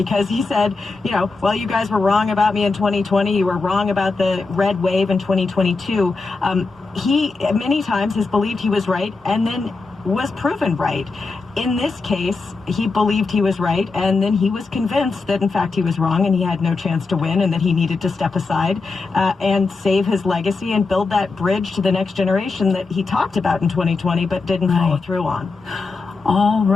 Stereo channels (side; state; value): right; quieter; 4.0 dB